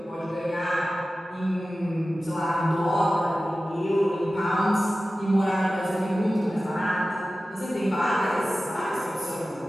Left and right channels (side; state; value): both; normal; correlation 0.95